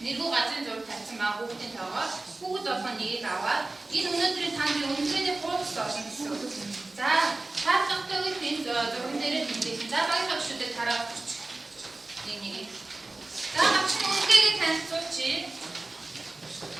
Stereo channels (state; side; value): quieter; left; 3.1 dB